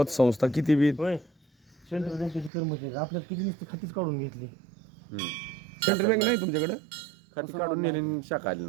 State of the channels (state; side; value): drops out; left; at 2.5 s